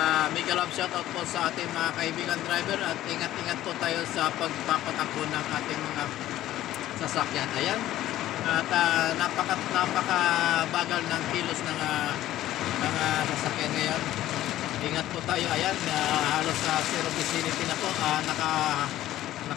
mega love shoutout po sa ating mga kaibigan driver. At ingat-ingat po tayo sa pagpapatakbo ng ating mga sasakyan. Ayan. At napakabagal ng kilos ng sasakyan ngayon. Ingat po tayo. Ayan, halos sa zero vicinity na po.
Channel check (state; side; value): quieter; right; 14.0 dB